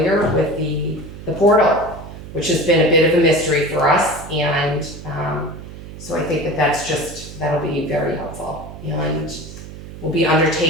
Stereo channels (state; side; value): noise; right; hum, 13 dB below the sound